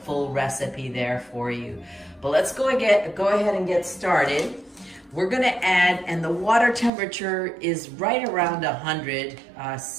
recipe there for you. But let's go ahead and get started. We're gonna add, and the water temperature is right around 100.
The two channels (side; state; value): left; drops out; at 6.9 s